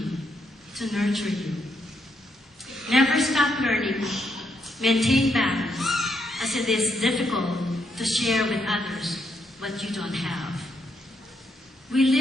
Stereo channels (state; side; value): normal; both; correlation 0.77